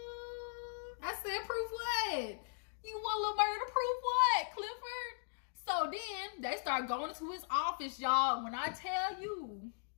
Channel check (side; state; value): right; silent; digital silence